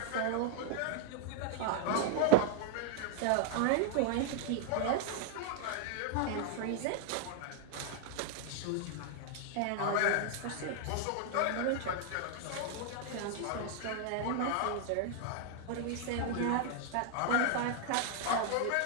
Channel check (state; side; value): different; both; correlation 0.00